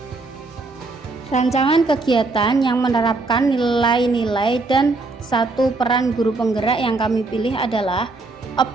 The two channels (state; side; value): quieter; left; 3.4 dB